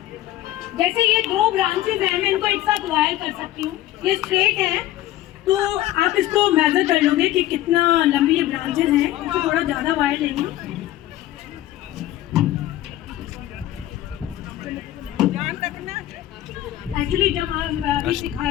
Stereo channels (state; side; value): quieter; right; 14.3 dB